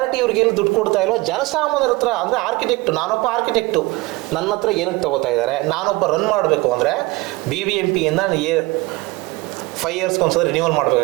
ಇವ್ರಿಗೆ ಏನು ದುಡ್ಡು ಕೊಡ್ತಾ ಇಲ್ವೋ, ಜನಸಾಮಾನ್ಯರ ಹತ್ರ, ಅಂದ್ರೆ ಆರ್ಕಿಟೆಕ್ಟ್, ನಾನೊಬ್ಬ ಆರ್ಕಿಟೆಕ್ಟು, ನನ್ನ ಹತ್ರ ಏನಕ್ಕೆ ತಗೋತಾ ಇದ್ದಾರೆ? ನಾನೊಬ್ಬ ರನ್ ಮಾಡಬೇಕು ಅಂದರೆ BBMP ಇಂದ 5 ಇಯರ್ಸ್ಗೆ ಒಂದ್ಸಲ ರಿನ್ಯೂವಲ್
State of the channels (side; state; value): left; quieter; 22.1 dB